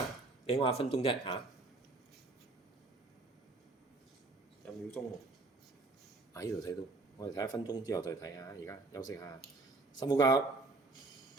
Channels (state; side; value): quieter; left; 3.2 dB